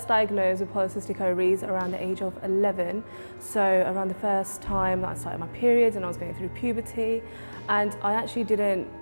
diagnosed with polycystic ovaries around the age of 11, so around the first time that I started my periods and I was going through puberty, and I actually didn't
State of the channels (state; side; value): inverted; both; correlation -1.00